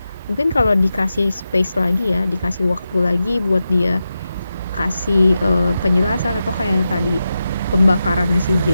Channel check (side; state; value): both; inverted; correlation -0.90